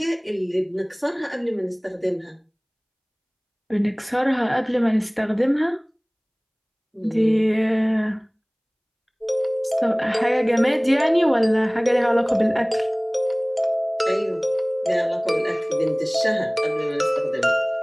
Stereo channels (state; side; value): identical; both; correlation 1.00